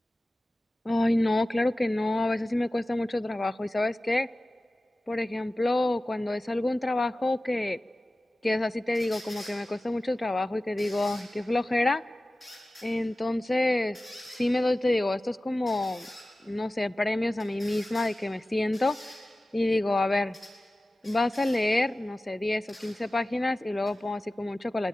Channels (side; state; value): both; normal; correlation 0.96